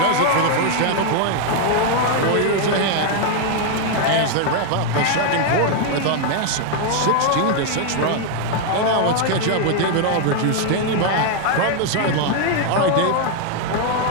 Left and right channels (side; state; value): both; different; correlation 0.00